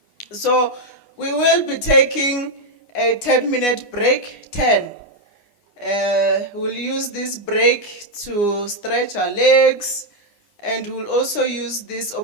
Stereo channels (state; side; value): late; right; 9.8 ms